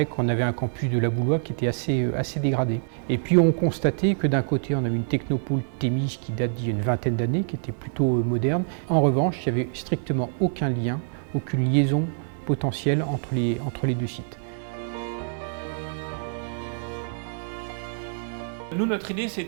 qu'on avait un campus de la Boulois qui était assez dégradé. Et puis on constatait que d'un côté, on avait une technopole Thémis qui date d'il y a une vingtaine d'années, qui était plutôt moderne. En revanche, il n'y avait strictement aucun lien, aucune liaison potentielle entre les deux sites. Nous, notre idée,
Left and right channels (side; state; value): left; silent; digital silence